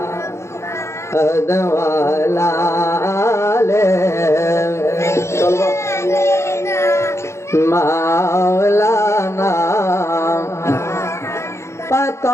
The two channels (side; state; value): right; late; 0.13 ms